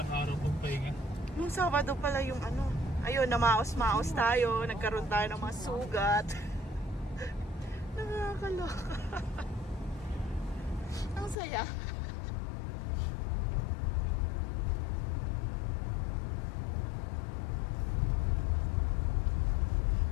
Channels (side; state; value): right; drops out; at 11.4 s